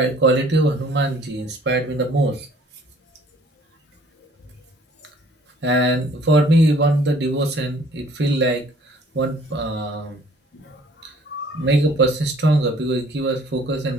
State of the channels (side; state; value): both; normal; correlation 0.55